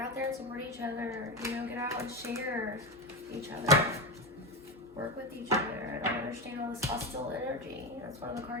there and support each other. You know, get out and share each other. Work with each other. I don't understand all this hostile energy. That's one of the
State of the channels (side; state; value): both; normal; correlation 0.17